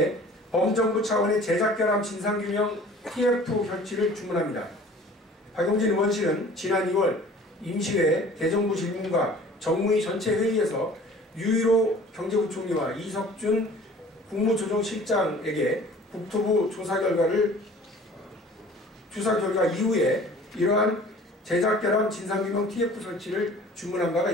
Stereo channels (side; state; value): both; normal; correlation 0.48